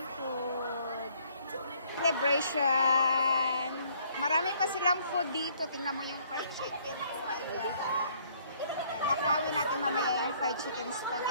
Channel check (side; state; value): both; inverted; correlation -0.63